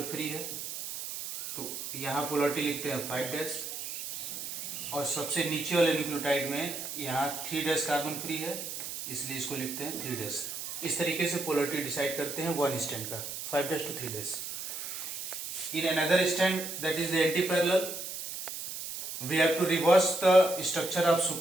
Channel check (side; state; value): right; noise; hiss, 7 dB below the sound